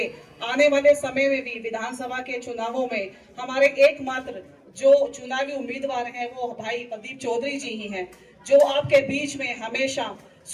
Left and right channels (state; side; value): identical; both; correlation 1.00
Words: आने वाले समय में भी विधानसभा के चुनावों में हमारे एकमात्र जो चुनावी उम्मीदवार हैं वो भाई प्रदीप चौधरी जी ही हैं, जो आपके बीच में हमेशा